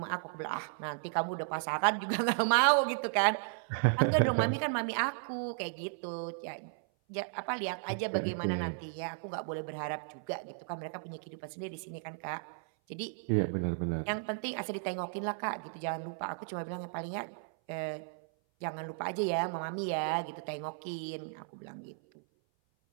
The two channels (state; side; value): silent; left; 55 dB below the other